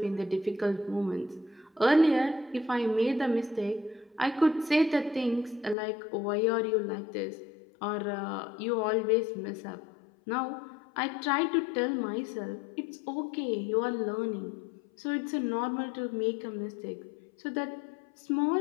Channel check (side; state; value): right; drops out; at 5.8 s